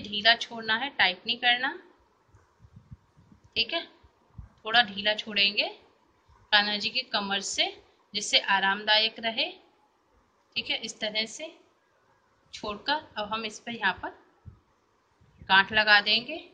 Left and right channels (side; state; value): both; identical; correlation 1.00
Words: ढीला छोड़ना है, टाइट नहीं करना। ठीक है, थोड़ा ढीला छोड़ेंगे कान्हा जी की कमर से, जिससे आरामदायक रहे। ठीक है, इस तरह से छोड़कर अब हम इस पर यहाँ पर गांठ लगा देंगे